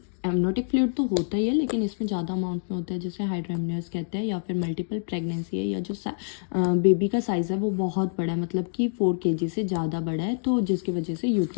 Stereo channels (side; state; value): right; silent; digital silence